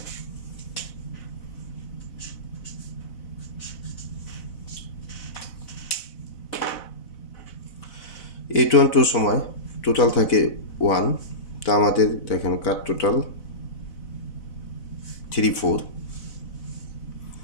A12 সময় টোটাল থাকে 1, তো আমাদের দেখেন কাট টোটাল 3 4,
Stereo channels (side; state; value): right; late; 4.0 ms